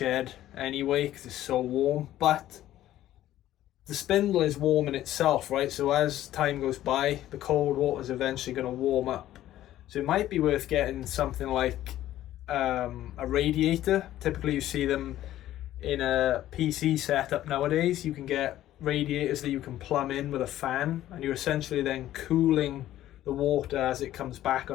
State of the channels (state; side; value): quieter; right; 13.5 dB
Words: anyway because it's so warm, but the spindle is warm in itself, right? So as time goes by, the cold water is eventually going to warm up. So it might be worth getting something like a radiator. Typically you see them in a PC setup nowadays. You can get radiators that you can plumb in with a fan, and you're essentially then cooling the water as it comes back